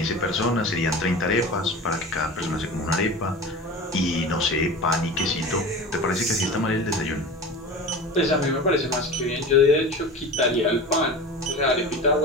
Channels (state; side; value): normal; both; correlation 0.33